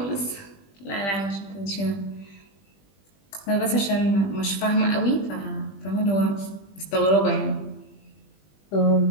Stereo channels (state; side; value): late; right; 20 ms